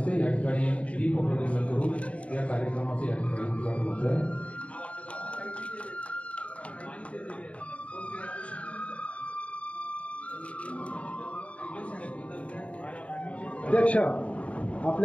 या ठिकाणी दीप प्रज्वलन करून या कार्यक्रमाचे या ठिकाणी उद्घाटन होत आहे। अध्यक्ष,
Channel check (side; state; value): right; late; 0.064 ms